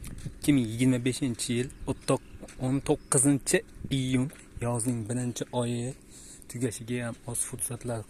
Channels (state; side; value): identical; both; correlation 1.00